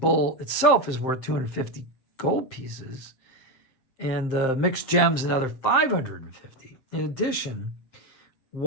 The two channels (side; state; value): right; late; 7.6 ms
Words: itself is worth 250 gold pieces, and the mixed gems another 550. In addition,